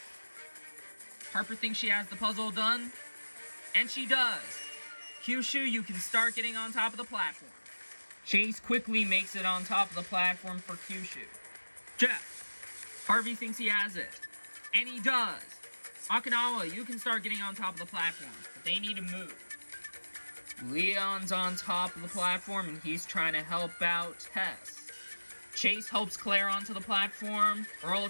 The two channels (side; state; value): both; inverted; correlation -1.00